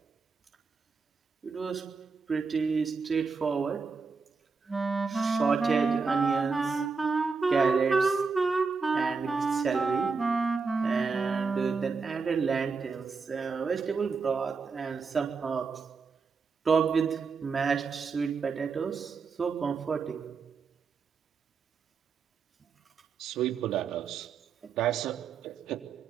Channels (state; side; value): quieter; left; 4.9 dB